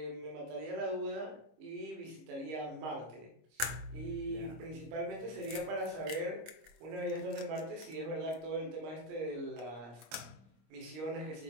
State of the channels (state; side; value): late; left; 25 ms